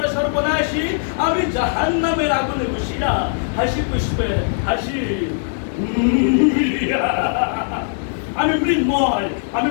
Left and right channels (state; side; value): silent; right; digital silence